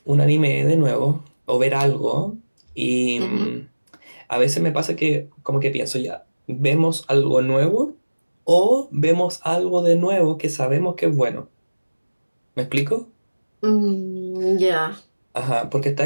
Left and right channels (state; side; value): inverted; both; correlation -1.00